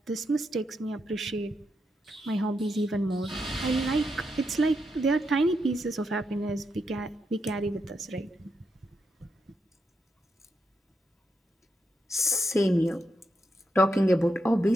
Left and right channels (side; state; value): both; normal; correlation 0.83